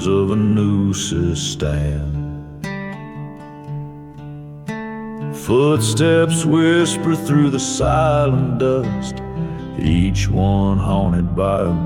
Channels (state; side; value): identical; both; correlation 1.00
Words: of a noose's stand. Footsteps whisper through the silent dust, each one haunted by a